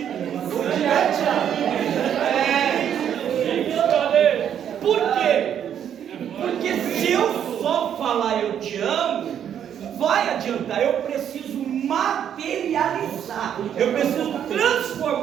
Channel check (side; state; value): left; quieter; 9.3 dB